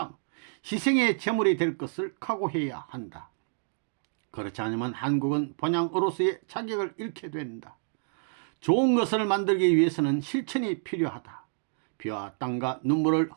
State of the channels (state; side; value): silent; left; digital silence